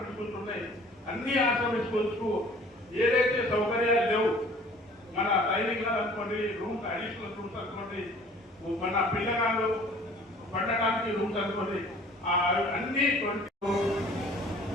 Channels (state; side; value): normal; both; correlation 0.51